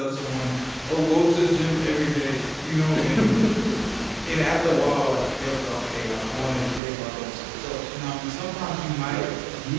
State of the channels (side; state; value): left; drops out; at 6.8 s